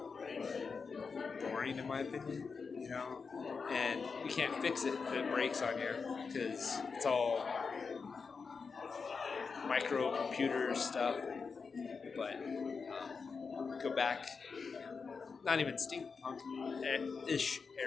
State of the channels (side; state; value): right; quieter; 5.1 dB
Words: boring, in my opinion, and you can't fix it if it breaks on you because it's all microcomputer stuff. But go back, not even steampunk ish